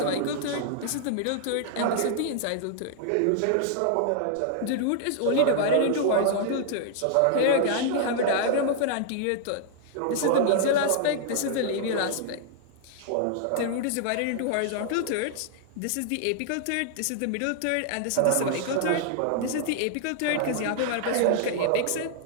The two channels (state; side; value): different; both; correlation -0.01